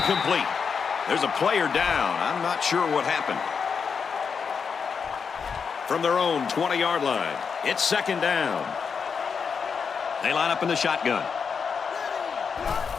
There's a player down. I'm not sure what happened. From their own 20-yard line, it's 2nd down. They line up in the shotgun.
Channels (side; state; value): right; quieter; 6.0 dB